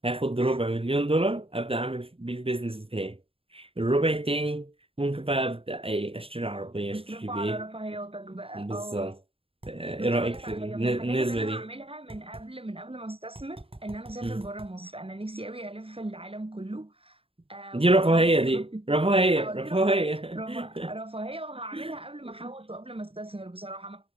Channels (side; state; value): left; late; 0.27 ms